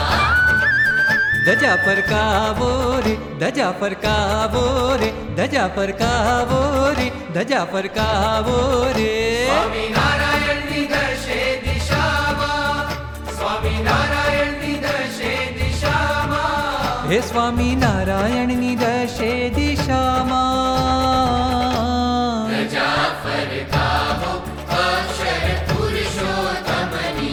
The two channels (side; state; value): both; identical; correlation 1.00